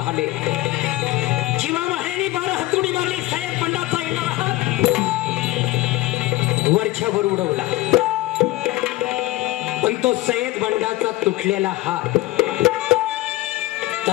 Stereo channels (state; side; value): quieter; right; 18.2 dB